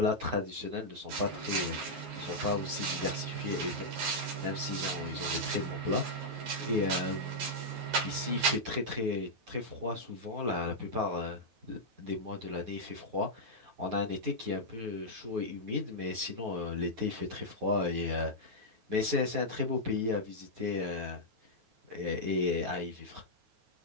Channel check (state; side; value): late; left; 9.3 ms